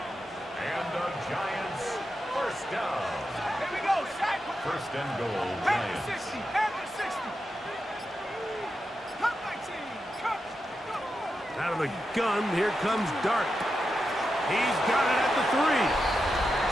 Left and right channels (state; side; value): normal; both; correlation 0.88